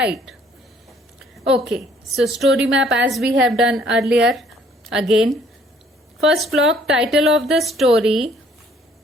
Okay, so story map as we have done earlier. Again, first block, title of the story,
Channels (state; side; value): normal; both; correlation 0.61